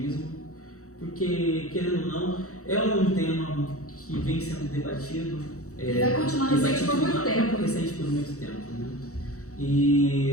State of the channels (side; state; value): right; late; 0.65 ms